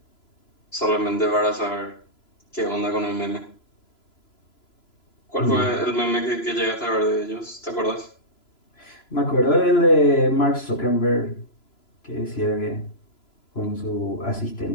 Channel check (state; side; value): late; right; 3.0 ms